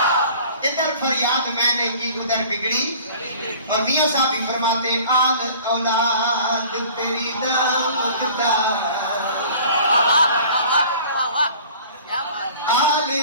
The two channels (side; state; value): both; inverted; correlation -0.47